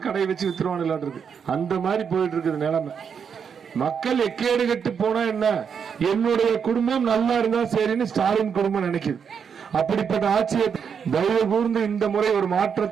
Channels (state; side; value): quieter; left; 6.9 dB